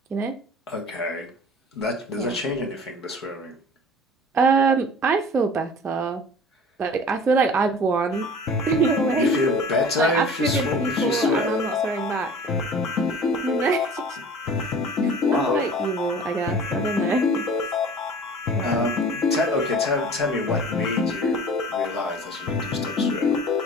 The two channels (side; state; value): both; normal; correlation 0.43